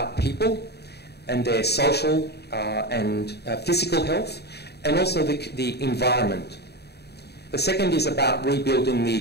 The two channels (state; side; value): late; right; 0.48 ms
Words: people and their social and physical health, and also the environment. The second is about rebuilding the